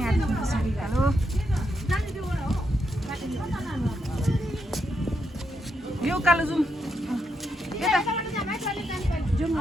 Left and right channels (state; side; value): normal; both; correlation 0.81